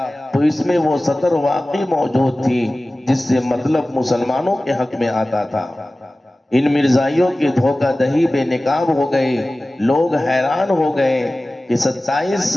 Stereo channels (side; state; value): both; normal; correlation 0.97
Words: تو اس میں وہ سطر واقعی موجود تھی جس سے مطلب مسلمانوں کے حق میں آتا تھا۔ ان مرزائیوں کی دھوکہ دہی بے نقاب ہو گئی۔ لوگ حیران ہو گئے کہ 27